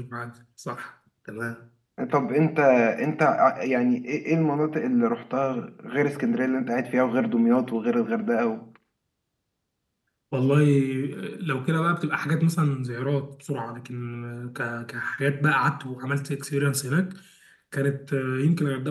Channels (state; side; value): identical; both; correlation 1.00